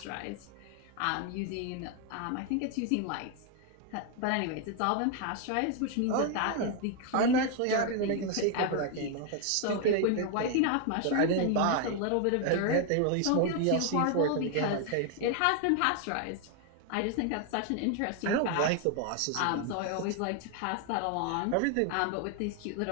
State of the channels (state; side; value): different; both; correlation 0.01